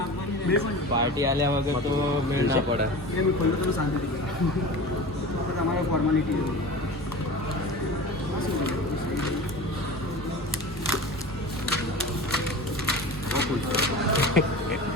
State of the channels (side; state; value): both; normal; correlation 0.34